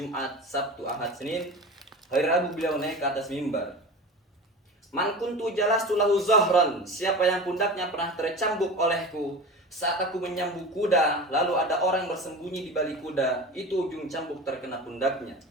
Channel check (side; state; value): both; normal; correlation 0.32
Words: Sabtu, Ahad, Senin. Hari Rabu beliau naik ke atas mimbar. Man kuntu jalastu lahu zahran, siapa yang pundaknya pernah tercambuk olehku saat aku menyambut kuda, lalu ada orang bersembunyi di balik kuda, itu ujung cambuk terkena pundaknya.